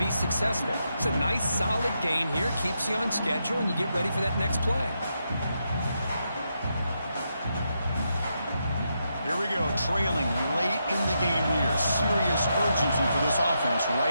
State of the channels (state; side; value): inverted; both; correlation -0.83